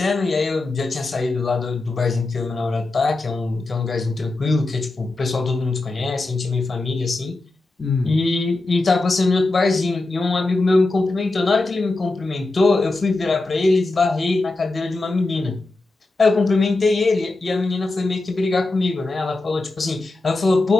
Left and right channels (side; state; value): right; quieter; 3.1 dB